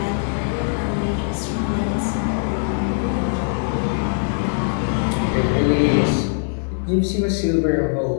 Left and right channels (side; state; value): right; silent; digital silence